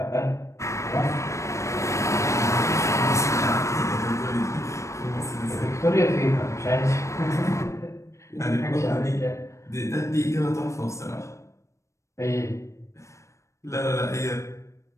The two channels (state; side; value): late; right; 0.15 ms